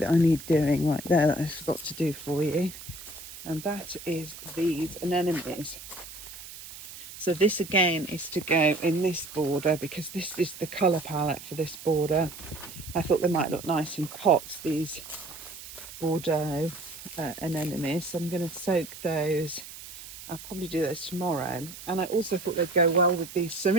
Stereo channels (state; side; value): noise; right; hiss, 14 dB below the sound